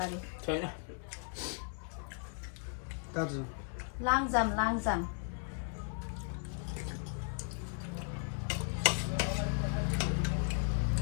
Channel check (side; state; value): right; silent; 54 dB below the other